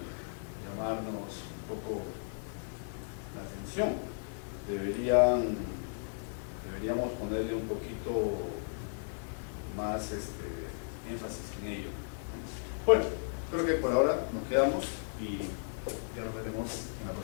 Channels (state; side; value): silent; right; digital silence